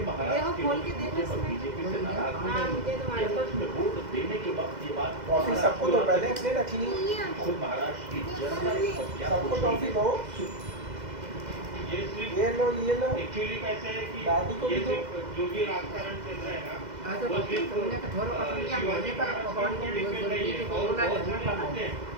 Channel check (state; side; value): late; left; 2.0 ms